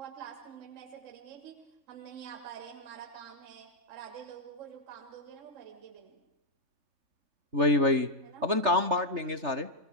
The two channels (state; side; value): late; left; 3.3 ms